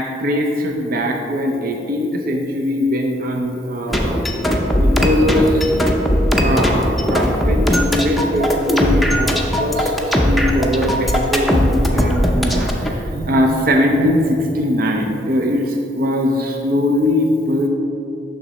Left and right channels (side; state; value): both; normal; correlation 0.68